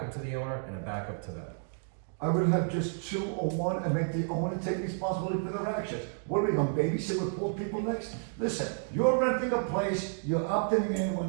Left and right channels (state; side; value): silent; left; digital silence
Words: to the owner and a backup to them. I would have just 2 or 1 and make the owner take responsibility for their actions. What are we gonna babysit with 4 people next? Listen, you're renting a place, you're opting in, we're